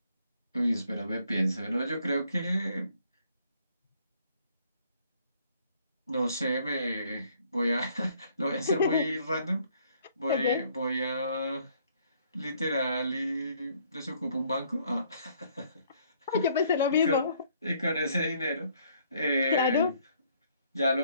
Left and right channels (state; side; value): inverted; both; correlation -0.65